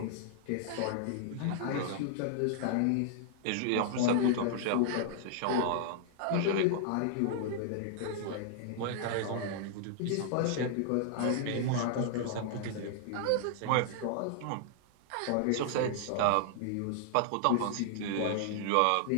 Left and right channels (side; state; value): both; different; correlation -0.01